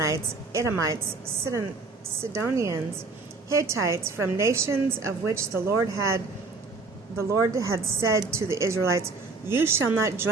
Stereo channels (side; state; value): left; quieter; 3.9 dB